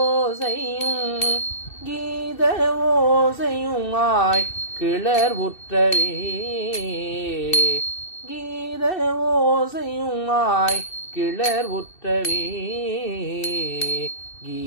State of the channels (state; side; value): late; right; 2.7 ms